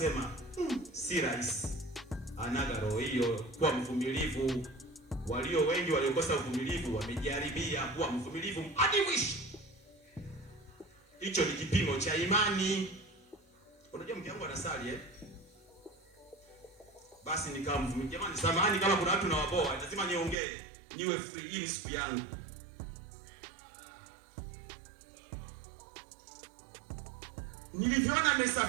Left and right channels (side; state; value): left; drops out; at 20.4 s